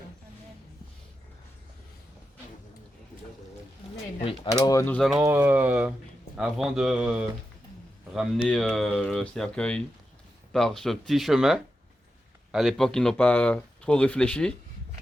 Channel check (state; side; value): normal; both; correlation 0.89